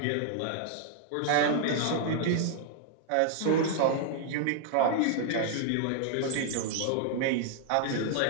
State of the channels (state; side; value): different; both; correlation -0.01